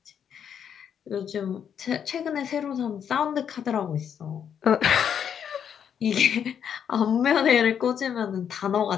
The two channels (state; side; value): quieter; right; 8.2 dB